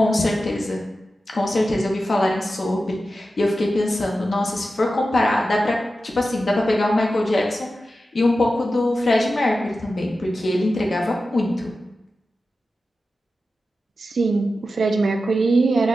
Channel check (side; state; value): both; normal; correlation 0.92